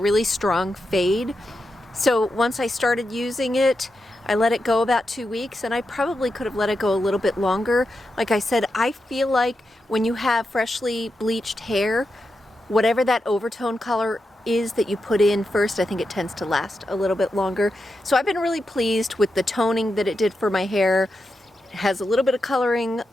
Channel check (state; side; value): normal; both; correlation 0.88